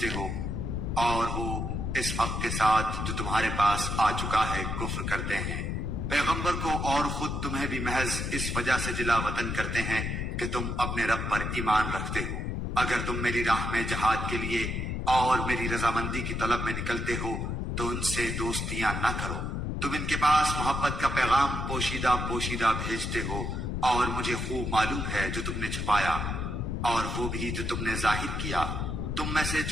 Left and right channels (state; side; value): noise; left; rumble, 2 dB below the sound